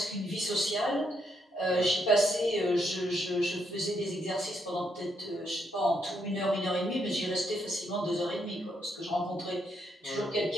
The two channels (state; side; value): normal; both; correlation 0.77